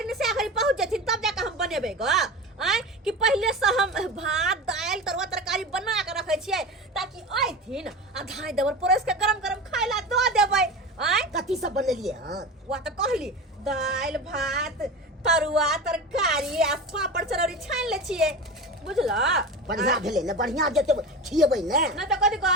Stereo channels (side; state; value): both; normal; correlation 0.28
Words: में से घड़ी पहुंच जथिन तब जाकर हम बनेबे ग। आय कि पहले से हम भात दाल तरुआ तरकारी बना के रखे छियै ताकि आइथिन आ धाय देवर परस के गरम गरम खाय ला दो देबै। आय कथी सब बनेलियै हन? वा तो कहली दाल भात तरुआ तरकारी आ पापड़ चरौरी छान ले छियै बुझला। बढ़िया भेलै ने, बढ़िया जते खिएबै ने। न तो कथी